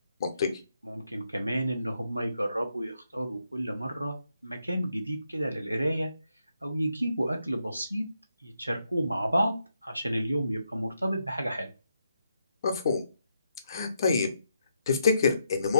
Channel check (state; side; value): inverted; both; correlation -0.80